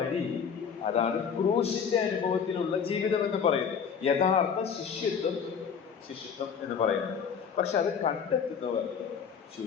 അതാണ് ക്രൂശിന്റെ അനുഭവത്തിലുള്ള ജീവിതം എന്ന് പറയുന്നത്. യഥാർത്ഥ ശിഷ്യത്വം എന്ന് പറയുന്നത്. പക്ഷെ അത് കണ്ടെത്തുന്നവർ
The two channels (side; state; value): right; quieter; 6.8 dB